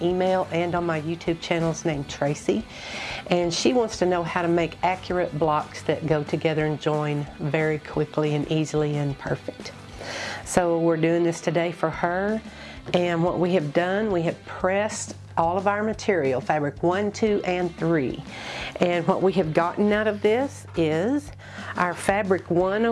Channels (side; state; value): both; identical; correlation 1.00